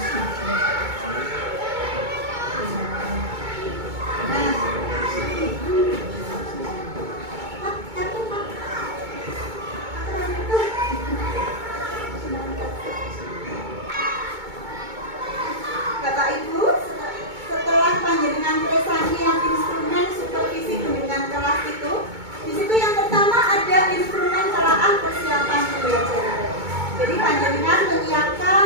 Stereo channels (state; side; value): late; left; 2.2 ms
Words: Bapak Ibu, setelah panjenengan presentasi yang instrumen supervisi bimbingan kelas itu, di situ yang pertama ada instrumen telaah persiapan pembelajaran. Jadi panjenengan menyiapkan